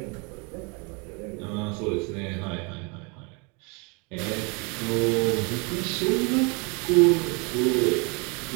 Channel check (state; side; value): quieter; left; 31.7 dB